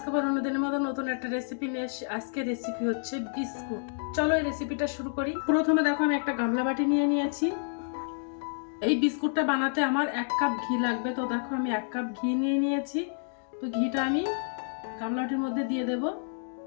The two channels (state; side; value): silent; right; digital silence